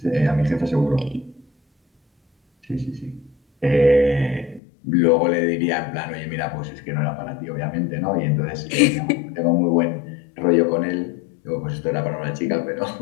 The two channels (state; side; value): drops out; right; at 4.6 s